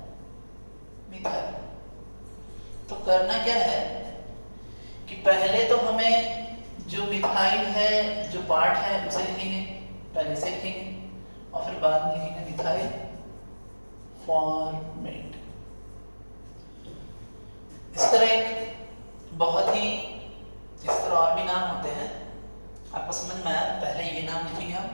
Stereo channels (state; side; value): inverted; both; correlation -1.00